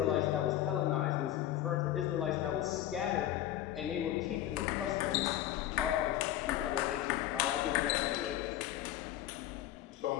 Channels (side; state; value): right; quieter; 12.8 dB